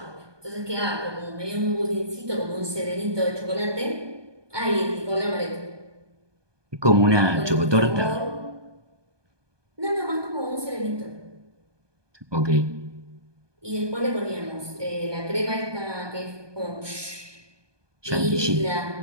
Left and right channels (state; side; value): late; left; 1.2 ms